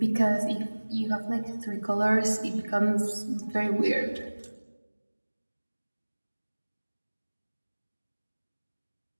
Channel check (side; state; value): both; inverted; correlation -1.00